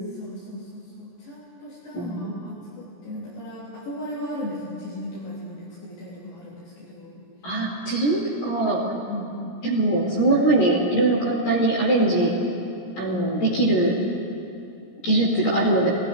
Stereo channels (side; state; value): right; late; 17 ms